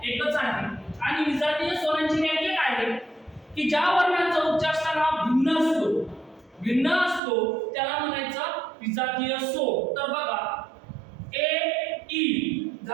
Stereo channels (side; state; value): left; drops out; at 7.2 s